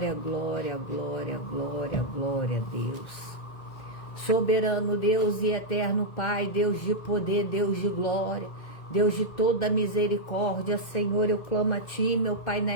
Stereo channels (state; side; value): late; right; 2.0 ms